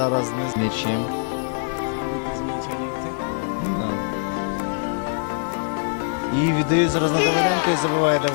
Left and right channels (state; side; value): silent; right; 63 dB below the other